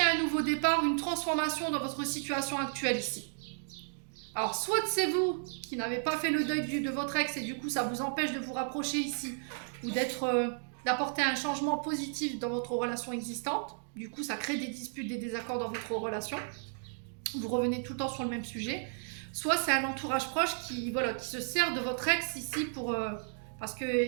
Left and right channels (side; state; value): left; silent; digital silence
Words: nouveau départ, une transformation dans votre situation actuelle ici. Alors, soit c'est vous qui n'avez pas fait le deuil de votre ex et du coup, ça vous empêche de vous rapprocher ici ou d'apporter un changement positif dans votre relation existante. Du coup, ça crée des disputes, des désaccords dans votre relation. Vous revenez tout le temps sur le même sujet. Soit c'est un entourage proche qui se sert de votre ex ici parce que